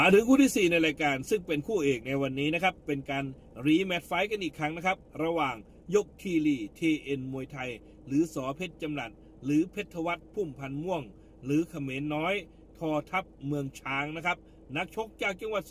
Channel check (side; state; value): both; identical; correlation 1.00